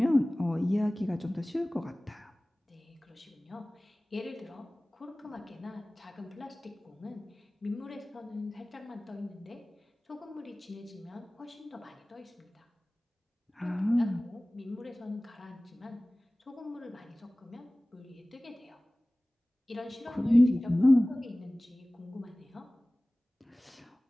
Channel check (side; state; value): both; normal; correlation 0.98